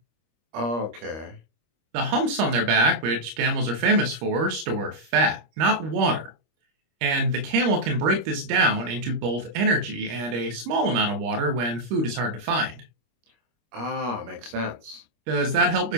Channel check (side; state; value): left; late; 25 ms